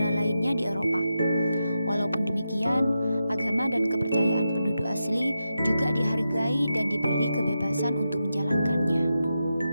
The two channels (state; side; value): inverted; both; correlation -0.88